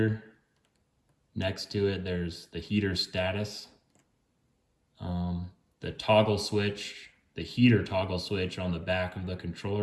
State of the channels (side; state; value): both; identical; correlation 1.00